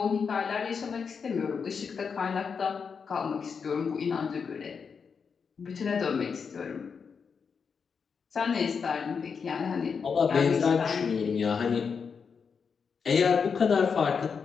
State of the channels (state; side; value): quieter; right; 5.9 dB